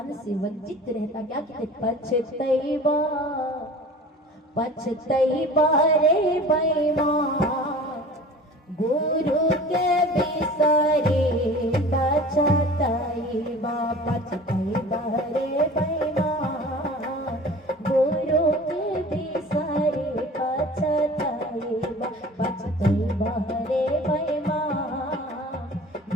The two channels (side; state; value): both; normal; correlation 0.42